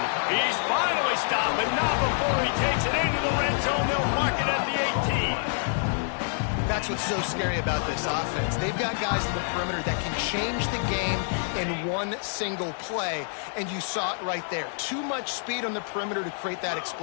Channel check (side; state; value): right; silent; digital silence